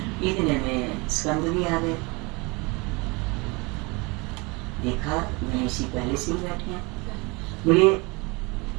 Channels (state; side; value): quieter; left; 27.1 dB